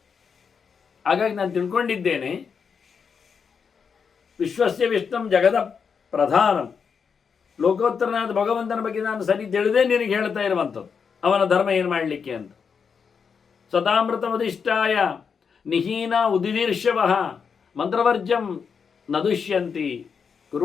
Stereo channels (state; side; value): quieter; right; 6.2 dB